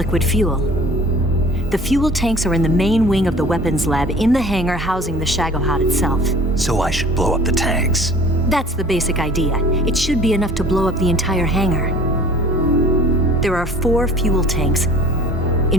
fuel. The fuel tanks are in the main wing of the weapons lab in the hangar housing the Shagohod itself. So I should blow up the tanks. That's the basic idea. It should be enough to blow up the entire hangar. There are 4 fuel tanks.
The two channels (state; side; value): normal; both; correlation 0.47